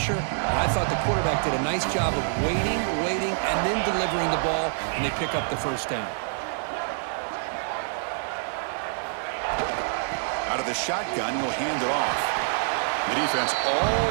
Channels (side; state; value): left; silent; digital silence